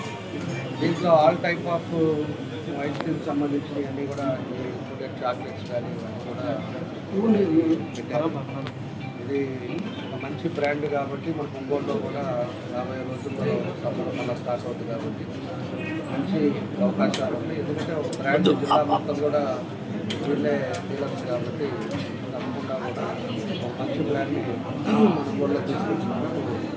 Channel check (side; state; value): both; identical; correlation 1.00